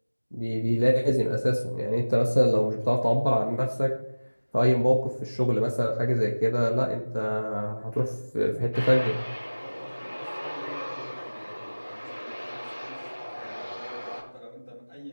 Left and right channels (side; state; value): both; inverted; correlation -1.00